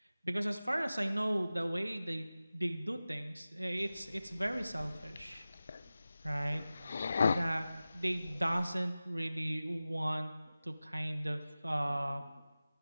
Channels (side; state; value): both; inverted; correlation -0.96